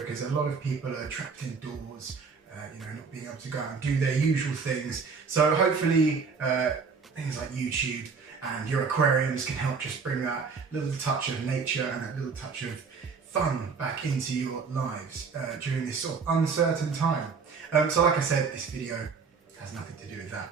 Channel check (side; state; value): left; quieter; 5.3 dB